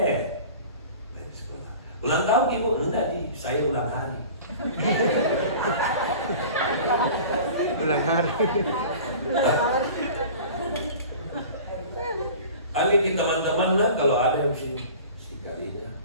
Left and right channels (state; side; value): inverted; both; correlation -0.40